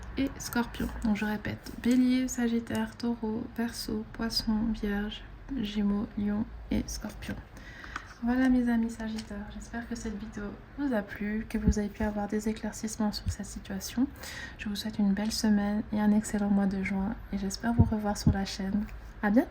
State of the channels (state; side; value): identical; both; correlation 1.00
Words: et Scorpion. Donc je répète, Bélier, Sagittaire, Taureau, Verseau, Poisson, Vierge, Gémeaux, Lion et Scorpion. Voilà mes amis Sagittaires, j'espère que cette vidéo vous a plu, que vous avez pu avoir des éclaircissements sur cette situation. Je vous souhaite une belle semaine et un excellent mois de juin et j'espère vous revoir sur la chaîne. À